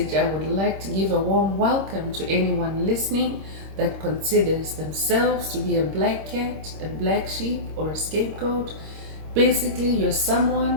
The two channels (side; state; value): left; late; 26 ms